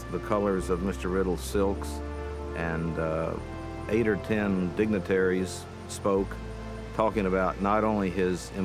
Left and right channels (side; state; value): both; identical; correlation 1.00